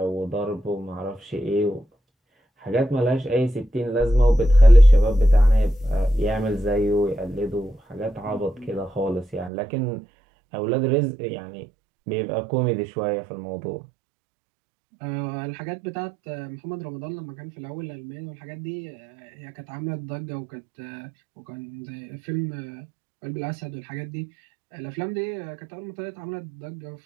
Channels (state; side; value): drops out; left; at 9.5 s